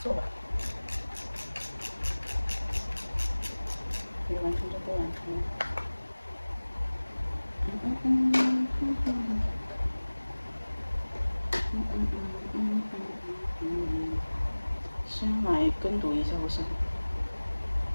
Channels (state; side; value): inverted; both; correlation -1.00